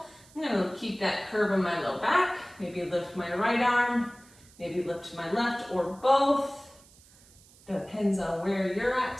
I'm going to keep that curve in my low back. Maybe lift my right arm, maybe lift my left or both. Depends on where you're at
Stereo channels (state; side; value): noise; right; hiss, 26 dB below the sound